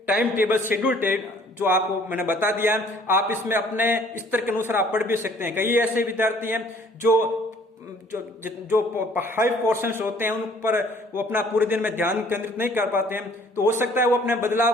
टाइम टेबल शेड्यूल जो आपको मैंने बता दिया। आप इसमें अपने स्तर के अनुसार आप पढ़ भी सकते हैं। कई ऐसे विद्यार्थी हैं जो हाई पोर्शंस होते हैं, उन पर वो अपना पूरे दिन में ध्यान केंद्रित नहीं कर पाते हैं, तो हो सकता है वो अपने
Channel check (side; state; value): both; normal; correlation 0.57